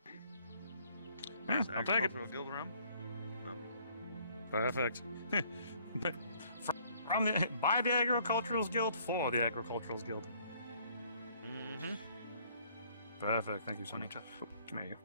Yeah, I'll take it. Agricultural Guild rum. Perfect. But from the by the Agricultural Guild for the Agricultural Guild. Mm-hmm. Perfect. Thank you so much. Oh, come here.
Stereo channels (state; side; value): inverted; both; correlation -0.62